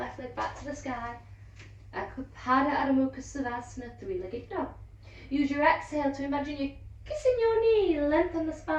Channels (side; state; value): both; identical; correlation 1.00